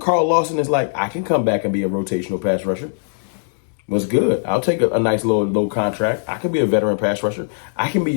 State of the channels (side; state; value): right; silent; digital silence